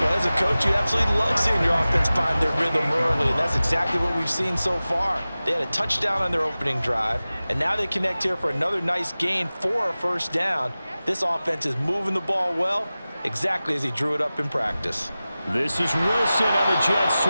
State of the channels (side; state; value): both; inverted; correlation -0.97